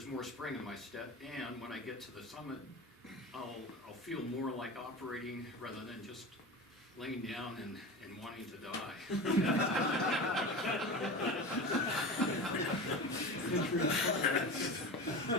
more spring in my step. And when I get to the summit, I'll feel more like operating rather than just laying down and wanting to die.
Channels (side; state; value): both; normal; correlation 0.29